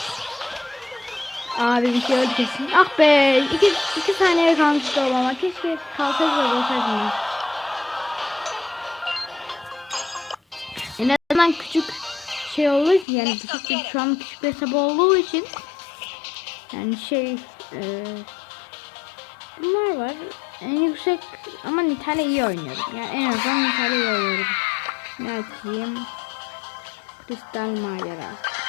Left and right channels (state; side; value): drops out; right; at 13.1 s